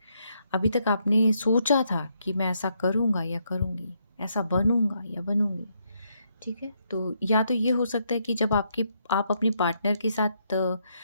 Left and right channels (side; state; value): both; inverted; correlation -0.76